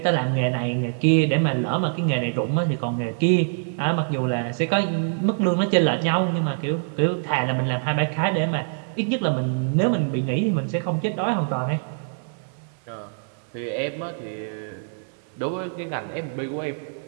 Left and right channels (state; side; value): silent; left; 62 dB below the other